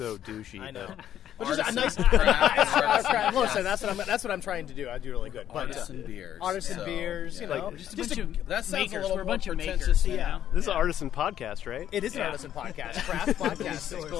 douchey. I know. But just a nice craft. Listen, that's what I'm trying to do. I do really good. Artisan beers. Artisan beers, that sounds makers. a little We're a more bunch of pretentious. makers. Yeah. This is an artisan podcast, right? It is an artisan podcast, craft podcast.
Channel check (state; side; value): quieter; right; 10.8 dB